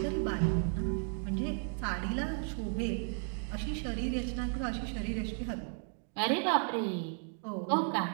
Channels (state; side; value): silent; left; 55 dB below the other